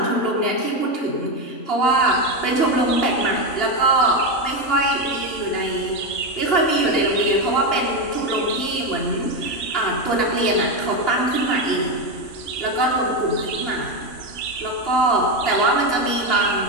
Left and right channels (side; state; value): right; late; 2.8 ms